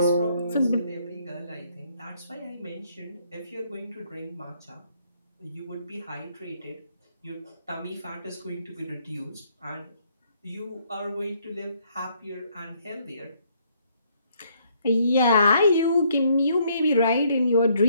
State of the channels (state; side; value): inverted; both; correlation -0.68